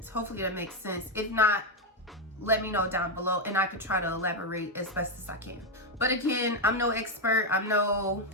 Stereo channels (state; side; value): normal; both; correlation 0.04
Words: Hopefully that makes sense. If not, let me know down below and I could try to elaborate as best as I can. But again, I'm no expert, I'm no